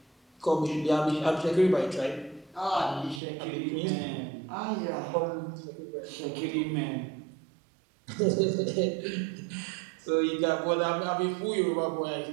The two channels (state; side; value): drops out; left; at 3.2 s